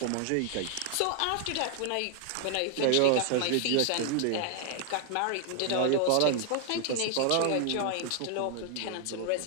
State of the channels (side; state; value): both; different; correlation 0.00